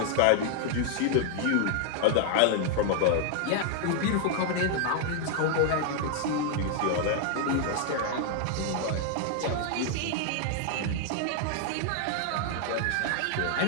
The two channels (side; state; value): both; different; correlation 0.00